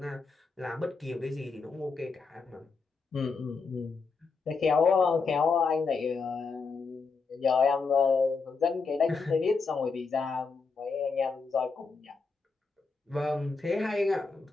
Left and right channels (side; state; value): right; quieter; 4.6 dB